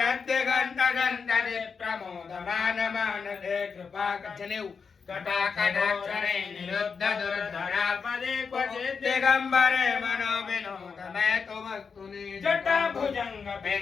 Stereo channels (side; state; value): right; quieter; 5.6 dB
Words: प्रमोदमान मानसे कृपा कचनेउ कटाकटाक्षरे निरुद्ध दुर्धरापदे क्वचित् दिगम्बरे मनो विनोदमय तुमस्तुनि जटा भुजंग